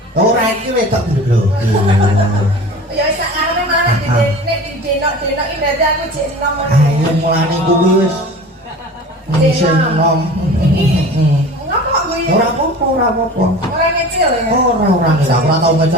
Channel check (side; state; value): both; normal; correlation 0.38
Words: Ora iki wedok lho. Ya wis sak karone malah nek Denok iki berarti aku jek enom ngono. Ayo mulane kuwi wis sing enom. Ngopo kuwi? Ora apa-apa, ora apa-apa. Ora ngecil ya. Ora ngecil, ora tau